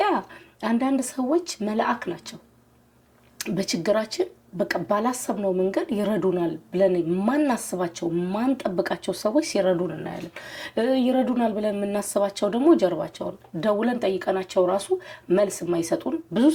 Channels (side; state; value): both; identical; correlation 1.00